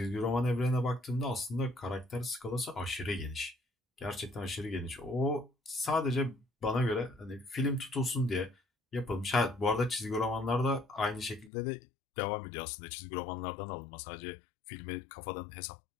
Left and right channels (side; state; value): right; drops out; at 11.5 s